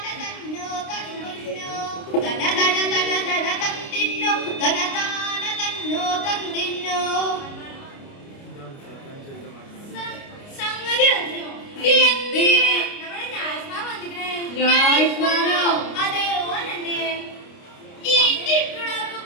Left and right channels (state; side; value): late; right; 29 ms